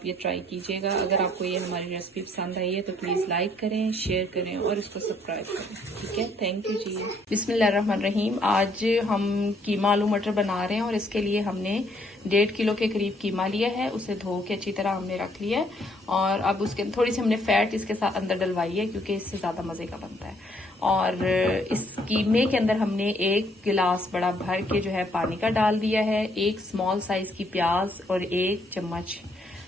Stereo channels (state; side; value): normal; both; correlation 0.67